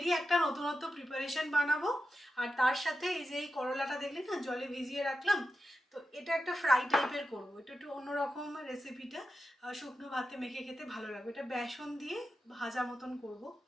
একটা নতুনত্ব প্রিপারেশন বানাবো। আর তার সাথে এই যে এই করলাটা দেখলে না জলে ভিজিয়ে রাখলাম, তো এটা একটা ফ্রাই টাইপের করবো। এটা একটু অন্যরকম রেসিপিটা, শুকনো ভাতে মেখে খেতে ভালো লাগবে। এটা বেসন দিয়ে ভাজা মতন করব।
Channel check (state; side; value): normal; both; correlation 0.90